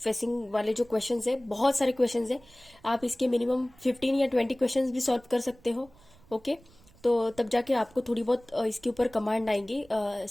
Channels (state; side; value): noise; right; rumble, 27 dB below the sound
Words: वाले जो क्वेश्चंस है, बहुत सारे क्वेश्चंस है। आप इसके मिनिमम 15 या 20 क्वेश्चंस भी सॉल्व कर सकते हो। ओके, तो तब जाके आपको थोड़ी बहुत इसके ऊपर कमांड आएंगी